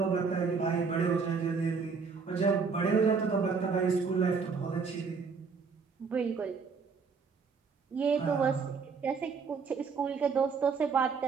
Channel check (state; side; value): quieter; left; 5.3 dB